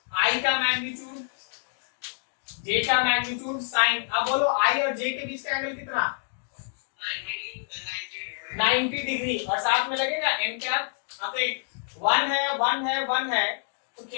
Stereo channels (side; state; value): right; silent; digital silence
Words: आई का मैग्नीट्यूड, जे का मैग्नीट्यूड, साइन। अब बोलो आई और जे के बीच का एंगल कितना? 90 डिग्री और साथ में लगेगा एन कैप। अब एक 1 है 1 है 1 है तो